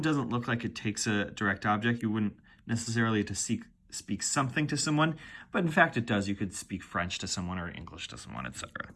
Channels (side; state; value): both; identical; correlation 1.00